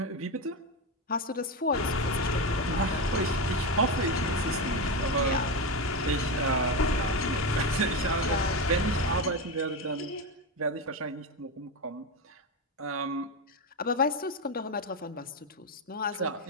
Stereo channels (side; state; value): both; normal; correlation 0.14